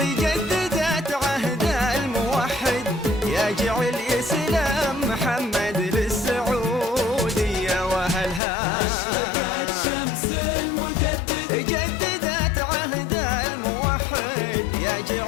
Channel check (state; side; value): drops out; right; at 8.4 s